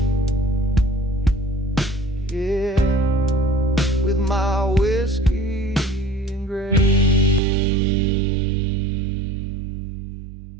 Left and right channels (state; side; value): drops out; left; at 7.4 s